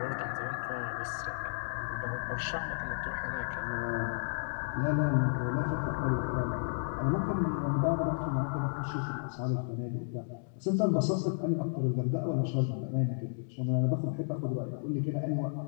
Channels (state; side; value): silent; right; digital silence